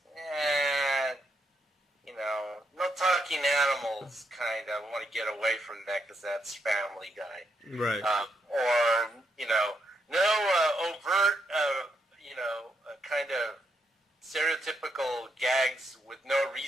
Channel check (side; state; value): both; normal; correlation 0.78